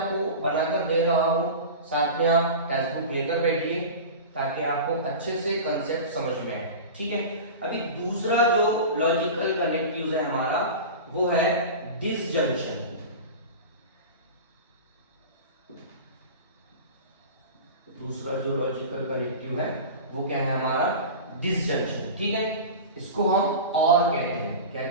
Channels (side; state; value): both; inverted; correlation -0.31